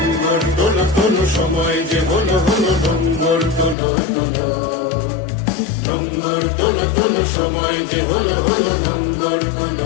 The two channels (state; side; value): drops out; right; at 3.8 s